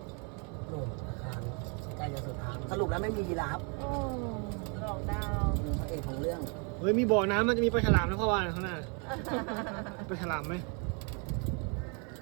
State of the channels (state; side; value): quieter; left; 36.1 dB